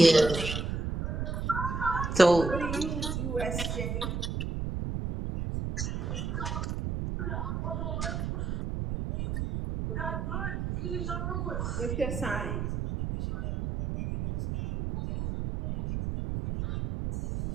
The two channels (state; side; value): noise; right; rumble, 2 dB below the sound